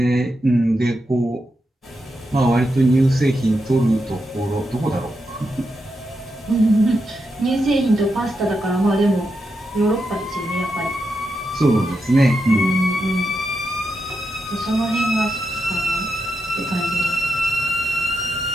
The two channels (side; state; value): both; normal; correlation 0.86